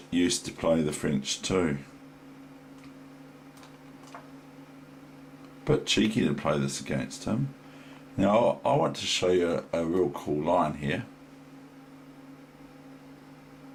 used to play the French too. But cheeky to play this against him. Now I want to show you a real cool line here.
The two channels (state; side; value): identical; both; correlation 1.00